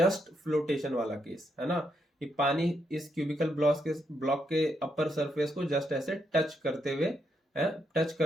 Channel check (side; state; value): both; normal; correlation 0.79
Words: फ्लोटेशन वाला केस, है ना, कि पानी इस क्यूबिकल ब्लॉक के अपर सरफेस को जस्ट ऐसे टच करते हुए है, टच